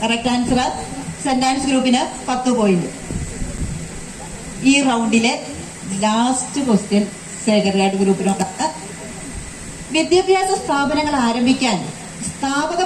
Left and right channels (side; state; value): both; identical; correlation 1.00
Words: Correct answer. സെന്റ് ആൻസ് ഗ്രൂപ്പിന് 10 പോയിന്റ്. ഈ റൗണ്ടിലെ ലാസ്റ്റ് ക്വസ്റ്റ്യൻ സേക്രഡ് ഗ്രൂപ്പിനോടാണ്. വിദ്യാഭ്യാസ സ്ഥാപനങ്ങൾ ആരംഭിക്കാൻ സ്ഥാപക